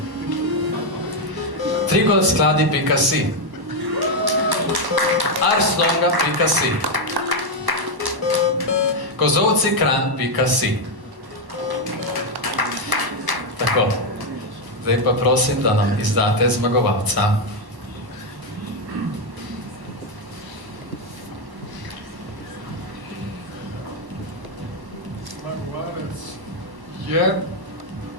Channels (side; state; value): left; late; 1.1 ms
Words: Trigolskladi.si, arslonga.si, kozovcikran.si. Tako, zdaj pa prosim, da nam izdate zmagovalca. Zmagovalec je